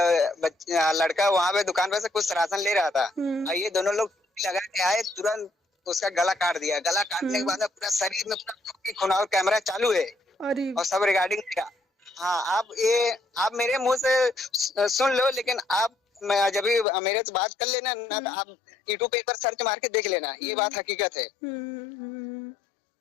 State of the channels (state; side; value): drops out; right; at 16.9 s